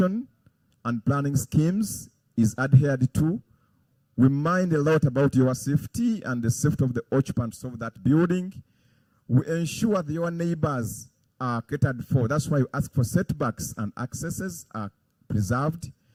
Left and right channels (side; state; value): both; identical; correlation 1.00